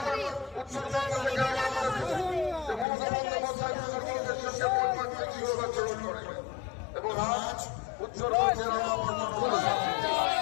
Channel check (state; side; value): drops out; right; at 2.9 s